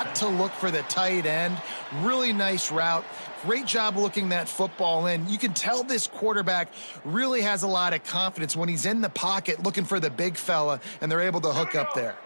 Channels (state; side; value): inverted; both; correlation -1.00